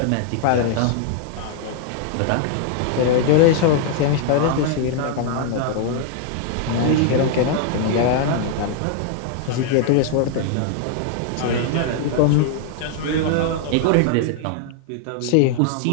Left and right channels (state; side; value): different; both; correlation 0.00